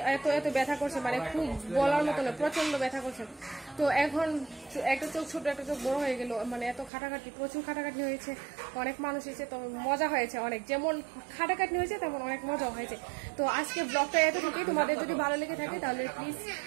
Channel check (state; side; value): drops out; left; at 6.9 s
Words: এত এত ব্যথা করছে, মানে খুব বলার মতো না, প্রচন্ড ব্যথা করছে। তো এখন একটা চোখ ছোট একটা চোখ বড় হয়ে গেল, মানে এত খাটাখাটি, প্রচুর খাটাখাটি হয়েছে, অনেক মানুষ এসেছে, তো মজা হয়েছে অনেক। যেমন খাটাখাটি হয়েছে তেমন অনেক মজা হয়েছে। তো আজকে ব্লগটা এতটুকুই। তোমাদের যদি ভালো লেগে থাকে তাহলে প্লিজ